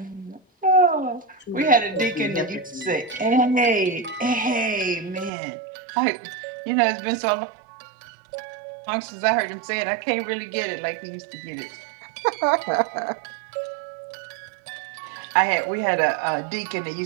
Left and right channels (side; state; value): left; drops out; at 5.3 s